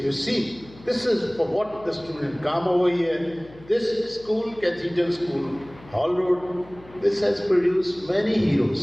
see, this is for what the student come over here. This school, Cathedral School, Hall Road, this has produced many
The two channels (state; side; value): noise; left; hum, 22 dB below the sound